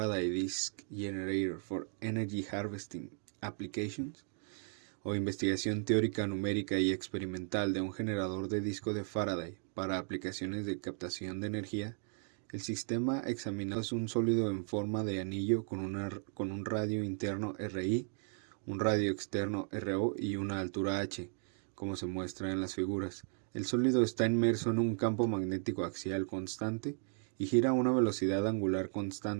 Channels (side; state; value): left; silent; 54 dB below the other